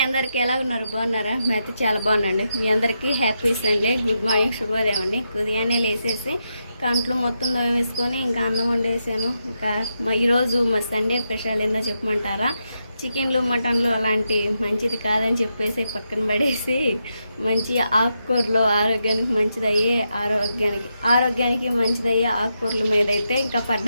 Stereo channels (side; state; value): both; inverted; correlation -0.85